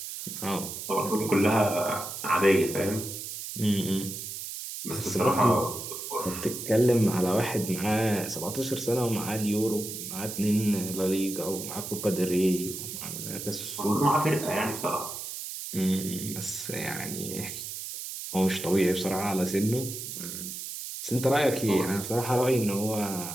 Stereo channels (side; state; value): right; noise; hiss, 8 dB below the sound